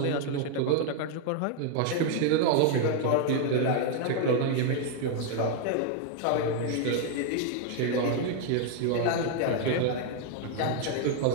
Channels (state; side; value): different; both; correlation 0.00